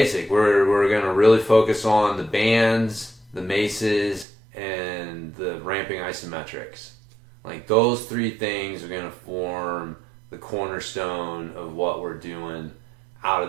We're going to really focus on the bands, the maces, and the ramping isometrics. Like those three things are going to form the cornerstone of what we're doing out of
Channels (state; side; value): drops out; left; at 4.2 s